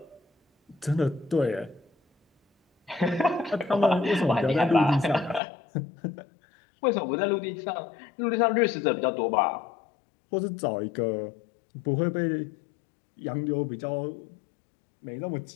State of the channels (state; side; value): drops out; right; at 5.4 s